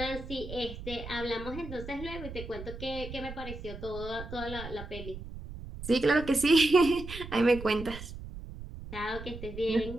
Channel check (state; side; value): noise; right; rumble, 11 dB below the sound